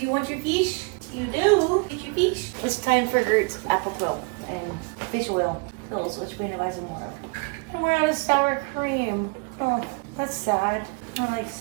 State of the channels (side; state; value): left; quieter; 32.1 dB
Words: you want your fish? You do. Get your fish. It's time for Gert's apple quill and fish oil quills, which we need to buy some more of. And we're out of sour cream. Oh, that's sad. I like